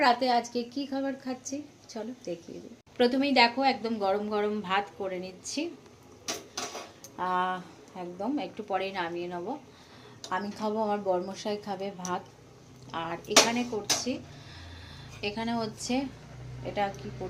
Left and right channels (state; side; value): identical; both; correlation 1.00